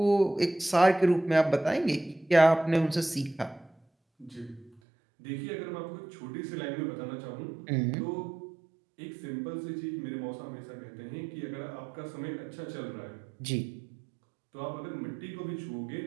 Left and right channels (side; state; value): left; drops out; at 4.8 s